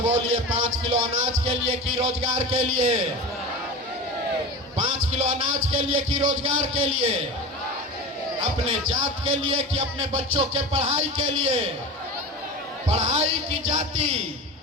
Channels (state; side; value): normal; both; correlation 0.29